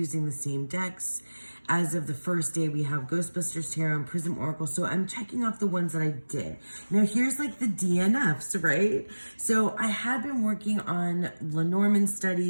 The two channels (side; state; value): both; inverted; correlation -1.00